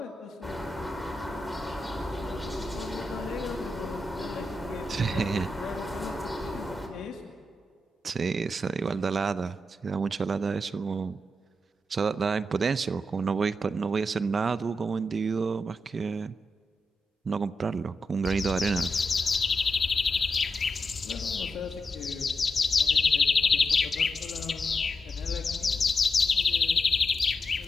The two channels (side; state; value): both; normal; correlation 0.86